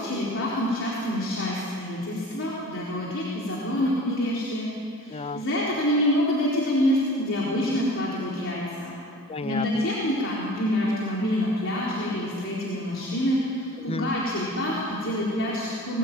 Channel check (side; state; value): both; normal; correlation 0.43